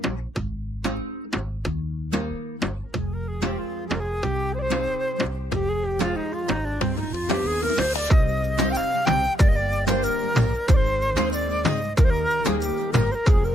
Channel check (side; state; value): both; normal; correlation 0.78